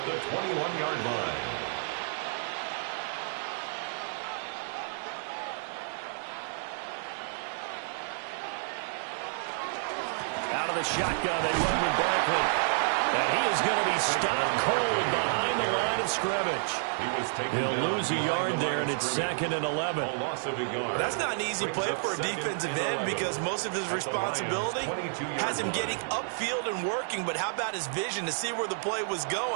the 21-yard line. Out of the shotgun, they run with Barkley. And he is going to be stopped cold behind the line of scrimmage. He'll lose a yard there, and it's second and 11. That's not an easy play for a defensive end because most of his responsibility has him getting upfield and working. But how about his vision to see where the play was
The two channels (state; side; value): silent; left; digital silence